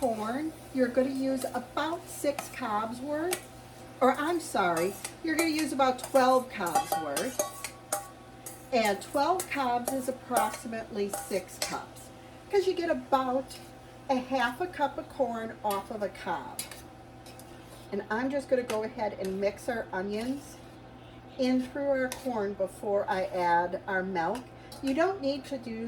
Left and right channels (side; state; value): both; identical; correlation 1.00